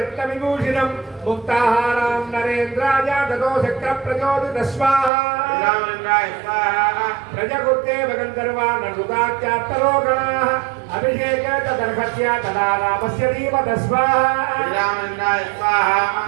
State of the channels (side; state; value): left; drops out; at 5.1 s